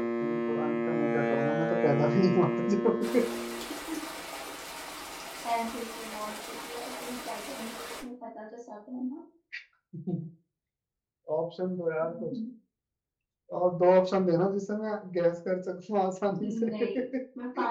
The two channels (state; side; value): identical; both; correlation 1.00